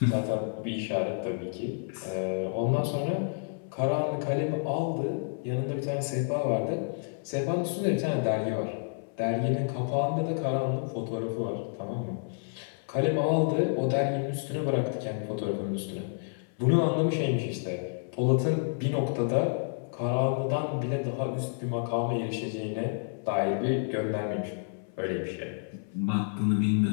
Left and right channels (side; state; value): right; silent; 57 dB below the other